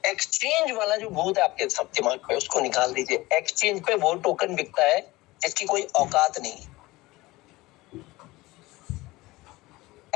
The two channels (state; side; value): quieter; right; 20.1 dB